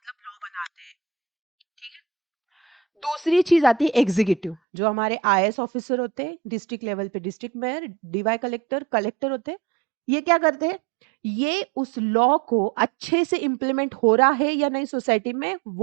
लॉ बनाते हैं. ठीक है. दूसरी चीज आती है एग्जीक्यूटिव, जो हमारे आईएएस ऑफिसर होते हैं, डिस्ट्रिक्ट लेवल पे district mayor, DY collector, collector होते हैं. ये क्या करते हैं, ये उस लॉ को अच्छे से इम्प्लीमेंट हो रहा है या नहीं सोसाइटी में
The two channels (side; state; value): left; drops out; at 4.6 s